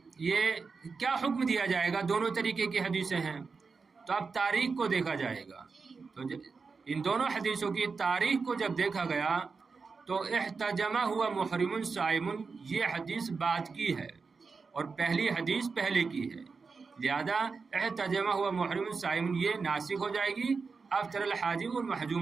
یہ کیا حکم دیا جائے گا؟ دونوں طریقے کی حدیثیں ہیں. تو اب تاریخ کو دیکھا جائے گا. تو ان دونوں حدیثوں کی تاریخ کو جب دیکھا گیا تو احتجمہ ہوا محرم صائم، یہ حدیث بعد کی ہے اور پہلی حدیث پہلے کی ہے. لہذا احتجمہ ہوا محرم صائم یہ ناسخ ہو جائے گی افطر الحاجم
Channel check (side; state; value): left; quieter; 4.8 dB